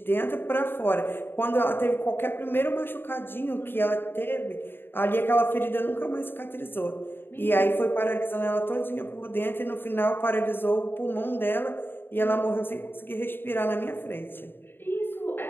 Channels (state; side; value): late; right; 0.10 ms